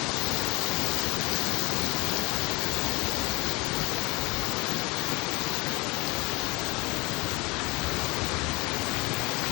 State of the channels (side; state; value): right; quieter; 25.2 dB